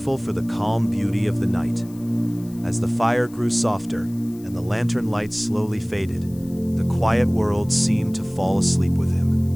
for the calm beauty of the night. As the fire grew softer and the lantern light slowly faded, the quiet world seemed to fall asleep with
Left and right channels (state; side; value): noise; left; hiss, 24 dB below the sound